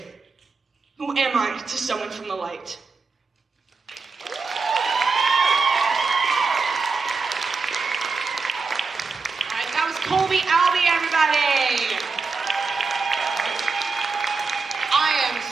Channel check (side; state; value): left; quieter; 4.4 dB